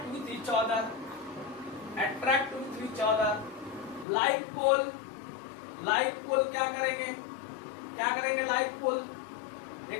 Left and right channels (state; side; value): drops out; right; at 4.0 s